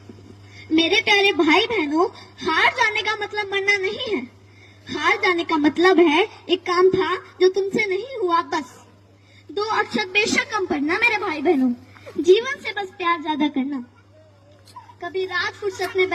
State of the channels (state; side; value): identical; both; correlation 1.00